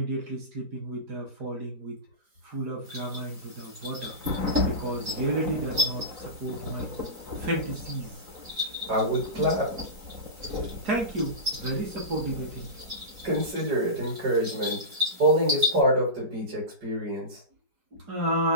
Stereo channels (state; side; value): late; left; 4.5 ms